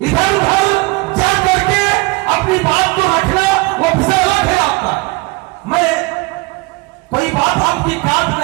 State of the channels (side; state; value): left; quieter; 24.6 dB